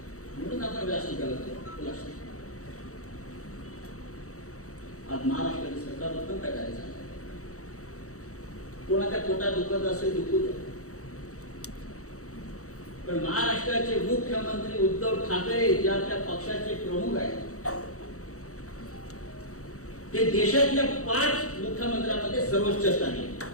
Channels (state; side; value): late; right; 0.65 ms